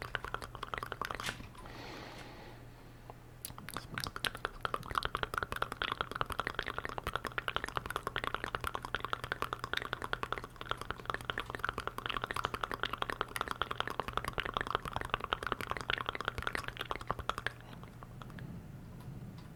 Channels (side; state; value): both; identical; correlation 1.00